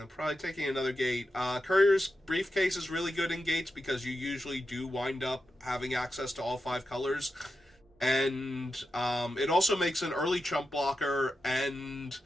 Probably taking another gate. Courier's Briefcase is really good in gates because you usually do wind up having access to all 5 colors. And it also makes an early chump blocker, and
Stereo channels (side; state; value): both; normal; correlation 0.89